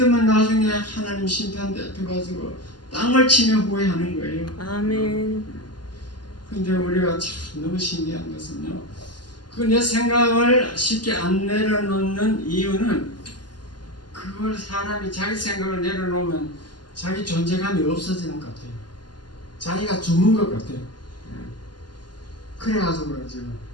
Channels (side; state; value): right; late; 0.71 ms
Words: 나중에 하나님 심판 대표가지고 땅을 치며 후회하는 거예요. 아멘. 근데 우리가 참 너무 신기한 것은요. 그 내 생각을 쉽게 안 내려놓는 이유는 그걸 사람이 자기 생각을 내려놓으면 자기 존재감이 없어지는 것 같아요. 자기가 죽는 것 같아요. 그래가지고 지금